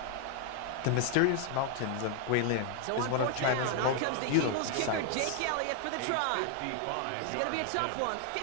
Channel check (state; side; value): different; both; correlation 0.00